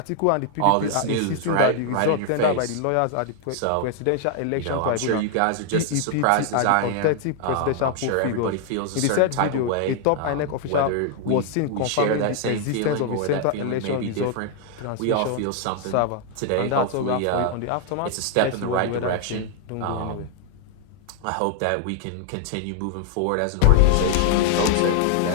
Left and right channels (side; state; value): both; different; correlation 0.00